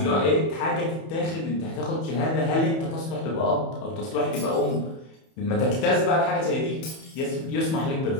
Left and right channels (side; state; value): right; late; 31 ms